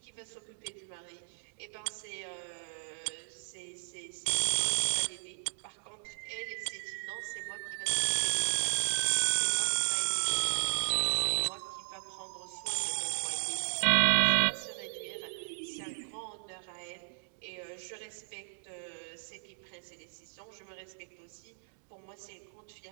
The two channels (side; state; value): left; silent; digital silence